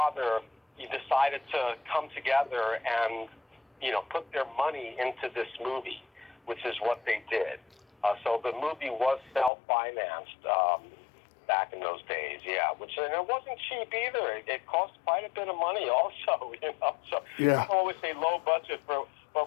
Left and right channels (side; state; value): right; drops out; at 9.5 s